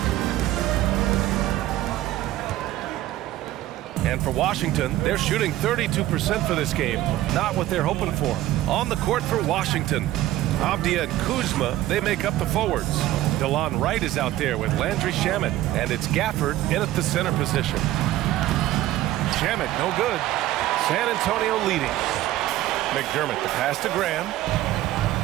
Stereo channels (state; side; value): quieter; left; 14.9 dB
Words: And for Washington, they're shooting 32% for this game. Not what they're hoping for. On the court for Washington, Avdia and Kuzma, they make up the forwards. DeLon Wright is out there with Landry Shamet, and it's Gafford in at the center position. Shamet, no good. San Antonio leading. McDermott, the pass to Graham.